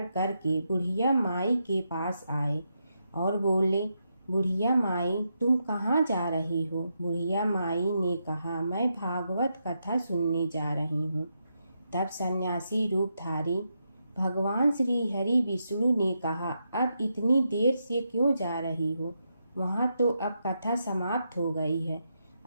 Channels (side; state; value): both; inverted; correlation -0.83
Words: करके बुढ़िया माई के पास आए और बोले, बुढ़िया माई तुम कहाँ जा रही हो? बुढ़िया माई ने कहा, मैं भागवत कथा सुनने जा रही हूँ। तब सन्यासी रूपधारी भगवान श्री हरि विष्णु ने कहा, अब इतनी देर से क्यों जा रही हो? वहाँ तो अब कथा समाप्त हो गई है,